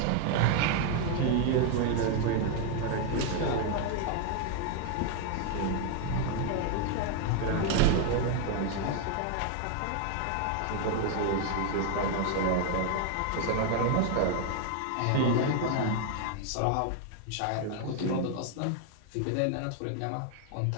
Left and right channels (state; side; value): different; both; correlation 0.00